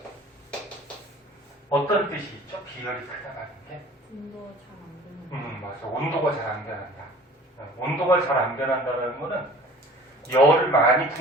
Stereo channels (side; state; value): both; normal; correlation 0.46